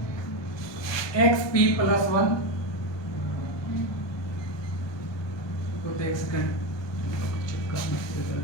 xp +1 को एक सेकंड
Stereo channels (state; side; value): late; right; 1.2 ms